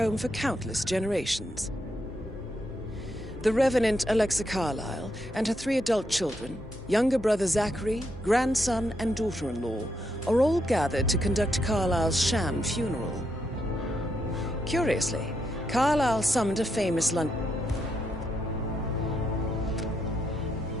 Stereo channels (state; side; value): normal; both; correlation 0.80